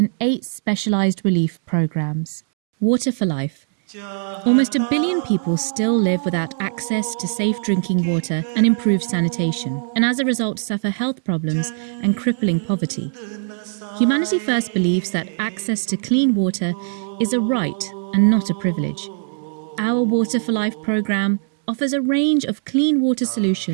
8 specialised relief programmes. Water for Life. Almost 1 billion people still live without access to safe drinking water and improved sanitation, and as a result suffer health problems and crippling poverty. Humanity First believes that access to clean water is a right and not a privilege. Our Water for Life programme offers a range of clean water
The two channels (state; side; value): silent; left; digital silence